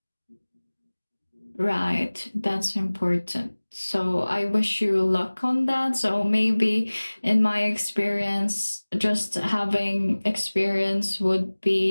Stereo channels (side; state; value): both; inverted; correlation -1.00